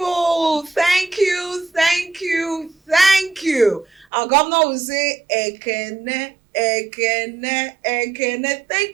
thank you. Our governor will say, Ekene, Ekene, Ekene.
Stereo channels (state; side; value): drops out; left; at 4.0 s